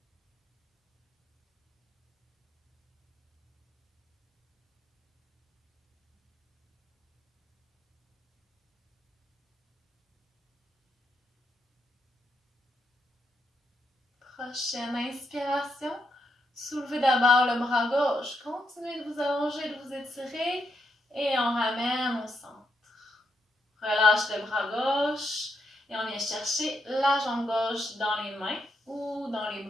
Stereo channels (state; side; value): normal; both; correlation 0.80